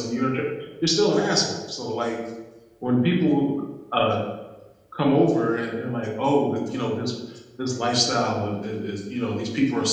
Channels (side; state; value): both; identical; correlation 1.00